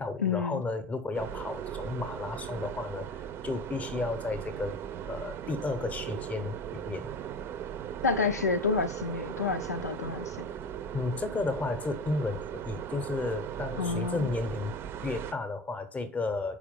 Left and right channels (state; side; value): normal; both; correlation 0.32